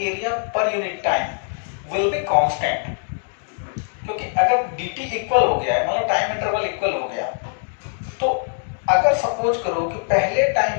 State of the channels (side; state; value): right; silent; digital silence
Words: per unit time will be constant. क्योंकि अगर dt इक्वल हो गया है, मतलब टाइम इंटरवल इक्वल हो गया, तो अगर सपोज करो कि पहले